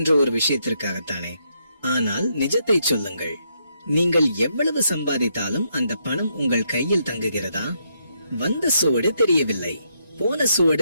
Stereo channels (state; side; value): inverted; both; correlation -0.77